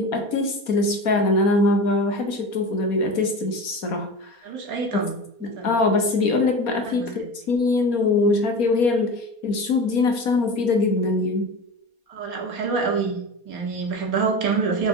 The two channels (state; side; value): late; right; 4.2 ms